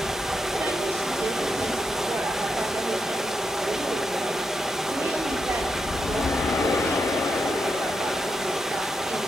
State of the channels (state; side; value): normal; both; correlation 0.85